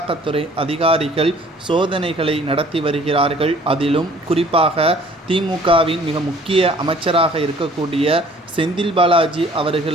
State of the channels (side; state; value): both; normal; correlation 0.54